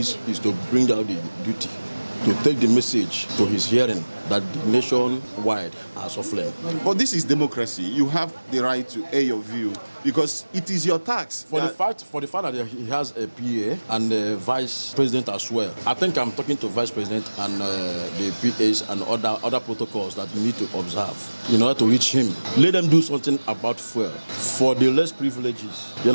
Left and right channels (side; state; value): both; inverted; correlation -1.00